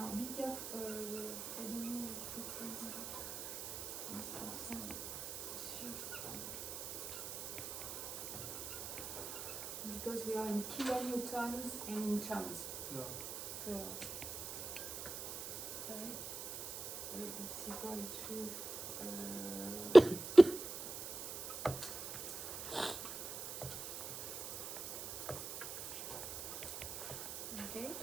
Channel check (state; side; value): noise; right; hiss, 7 dB below the sound